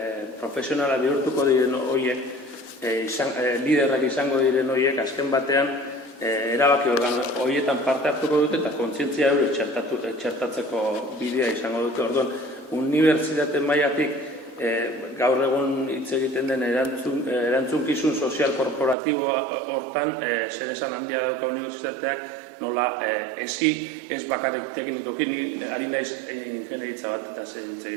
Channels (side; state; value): left; drops out; at 18.9 s